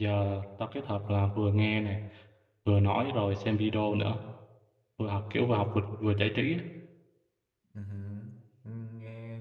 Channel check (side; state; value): both; identical; correlation 1.00